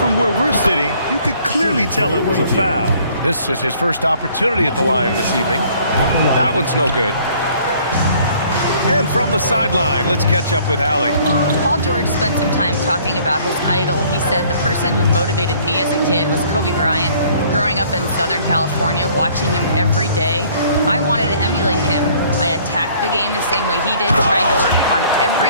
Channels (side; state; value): both; inverted; correlation -0.58